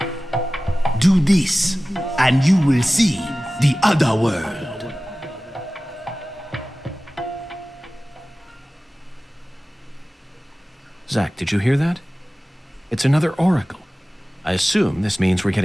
Do this, and you will see the other world. Zach, did you hear that? It's another oracle. I assume this means we're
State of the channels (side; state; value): both; normal; correlation 0.97